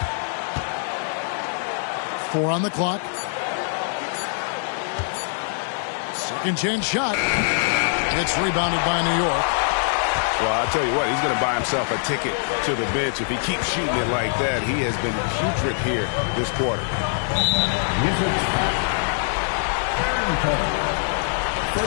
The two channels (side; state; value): right; silent; 63 dB below the other